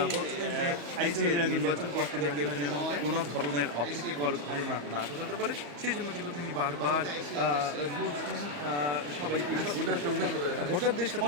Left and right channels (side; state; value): left; late; 34 ms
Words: বলছেন যে এই যে নির্বাচন করতে কেউ যেন কোনো ধরনের অপ্রীতিকর ঘটনা না ঘটাতে পারে সেই জন্য কিন্তু তিনি বারবার বলছেন সবাইকে ভোটারদের